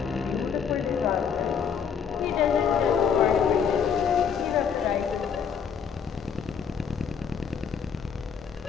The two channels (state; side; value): quieter; right; 7.1 dB